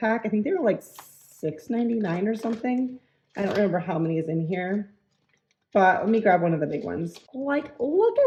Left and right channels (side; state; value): both; identical; correlation 1.00